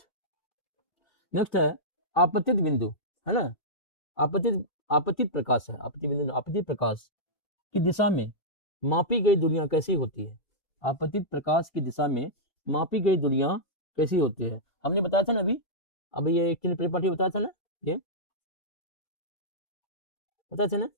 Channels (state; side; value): late; right; 2.4 ms